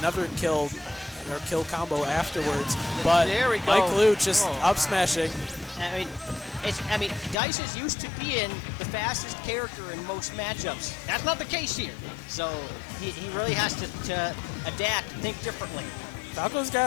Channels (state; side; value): drops out; right; at 7.4 s